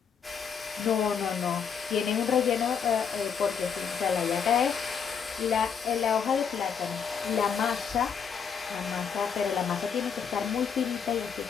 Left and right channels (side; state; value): right; quieter; 6.9 dB